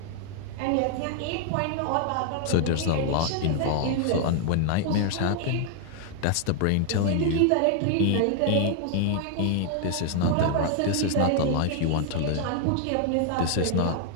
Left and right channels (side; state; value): both; different; correlation 0.00